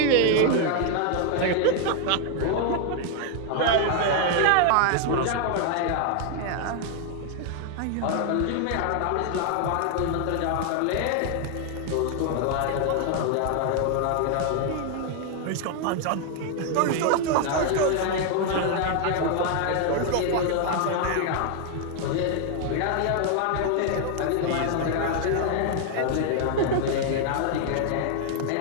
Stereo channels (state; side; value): different; both; correlation 0.00